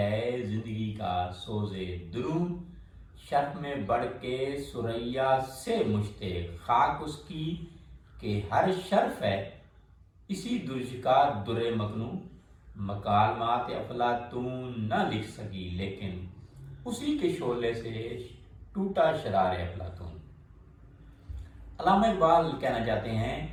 زندگی کا سوز درون، شرف میں بڑھ کے ثریا سے مشتاق خاک اس کی کہ ہر شرف ہے اسی درج کا در مکنون، مکالمات افلاطون نہ لکھ سکی لیکن اسی کے شعلے سے ٹوٹا شرار افلاطون۔ علامہ اقبال کہنا چاہتے ہیں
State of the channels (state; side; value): identical; both; correlation 1.00